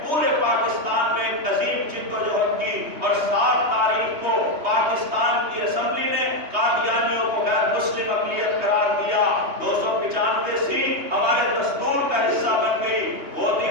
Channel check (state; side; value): late; left; 3.2 ms